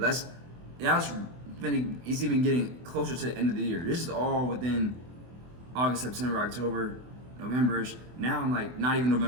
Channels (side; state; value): left; late; 24 ms